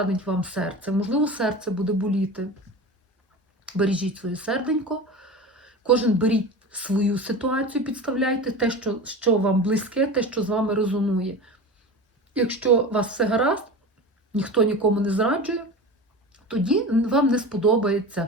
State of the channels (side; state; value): both; normal; correlation 0.31